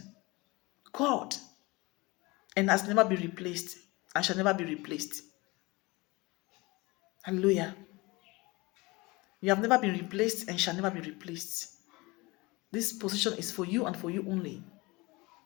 God, and has never been replaced and shall never be replaced. Hallelujah. You have never been replaced and shall never be replaced. This position is for you and for you only.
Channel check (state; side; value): quieter; right; 23.7 dB